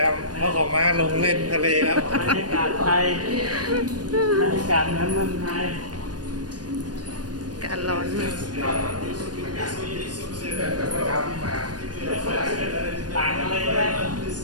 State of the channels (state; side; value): late; left; 0.69 ms